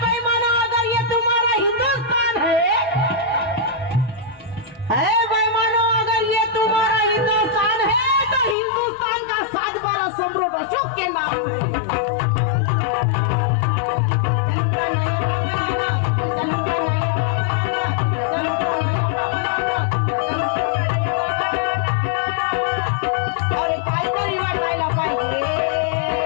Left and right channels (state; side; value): drops out; right; at 8.6 s